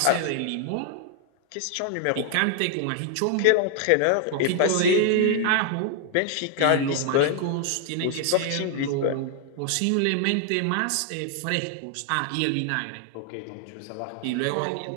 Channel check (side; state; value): both; different; correlation 0.00